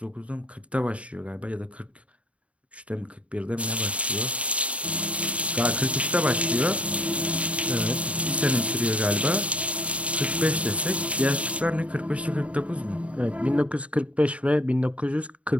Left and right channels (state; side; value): late; left; 0.064 ms